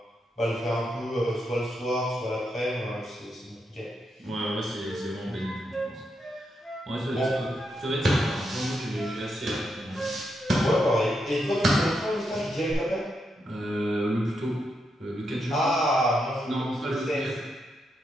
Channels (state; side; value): normal; both; correlation 0.82